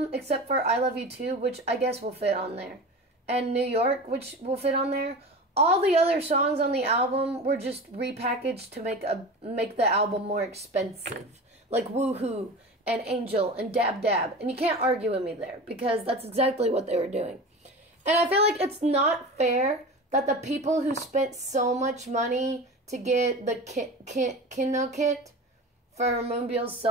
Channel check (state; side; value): normal; both; correlation 0.32